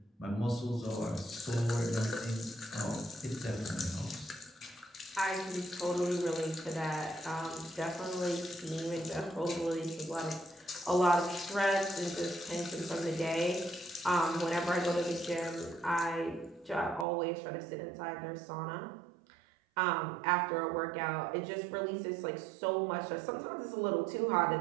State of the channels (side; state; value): left; drops out; at 17.1 s